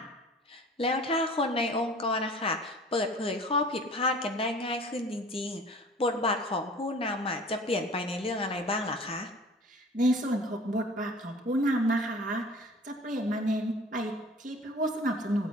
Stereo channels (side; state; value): both; normal; correlation 0.45